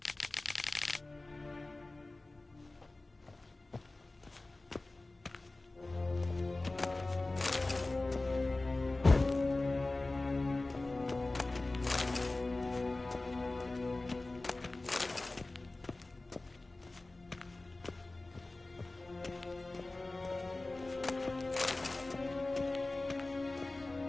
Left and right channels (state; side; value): quieter; right; 3.0 dB